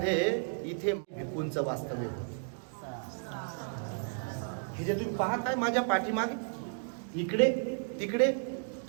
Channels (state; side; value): silent; left; digital silence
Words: इथे भिक्खूंचं वास्तव्य होतं. हे जे तुम्ही पाहताय माझ्या पाठीमागे, इकडे तिकडे